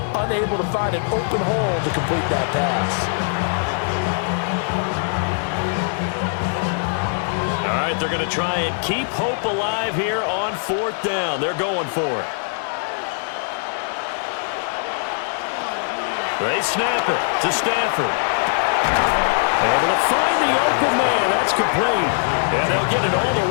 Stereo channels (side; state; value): right; silent; 65 dB below the other